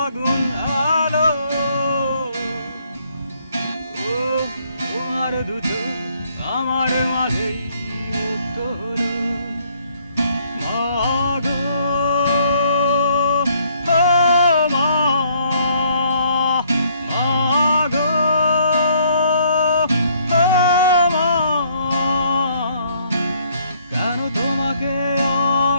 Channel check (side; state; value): both; inverted; correlation -0.66